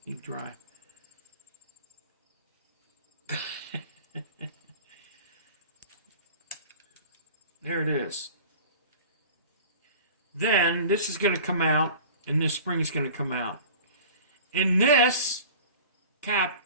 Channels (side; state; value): both; inverted; correlation -0.41